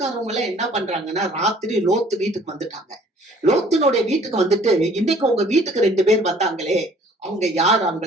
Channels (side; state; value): both; normal; correlation 0.55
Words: எல்லாம் என்ன பண்றாங்கன்னா, ராத்திரி லோத்து வீட்டுக்கு வந்துட்டாங்க. லோத்தினுடைய வீட்டுக்கு வந்துட்டு, இன்னைக்கு உங்க வீட்டுக்கு 2 பேர் வந்தாங்களே, அவங்க யார்?